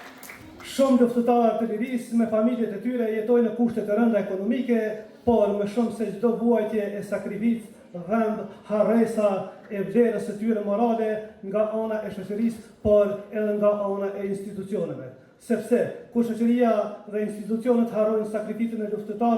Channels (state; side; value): identical; both; correlation 1.00